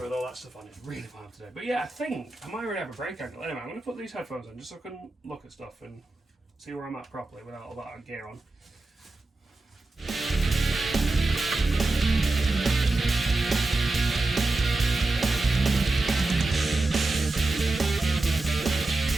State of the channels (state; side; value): quieter; left; 3.1 dB